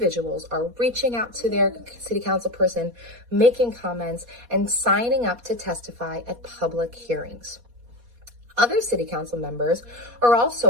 are reaching out to their city council person, making comments, and signing up to testify at public hearings. Other city council members are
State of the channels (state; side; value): late; left; 4.2 ms